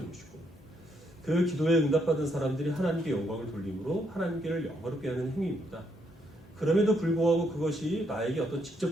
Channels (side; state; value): both; normal; correlation 0.75